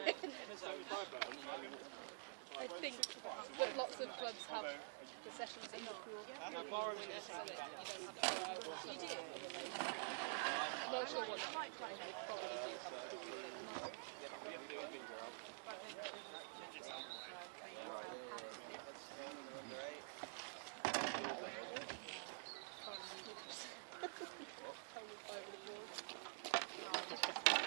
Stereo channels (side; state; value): left; silent; digital silence